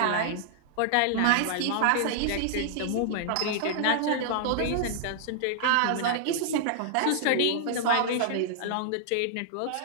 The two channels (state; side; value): different; both; correlation -0.01